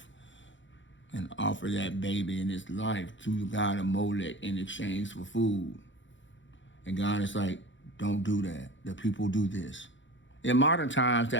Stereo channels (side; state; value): right; late; 0.55 ms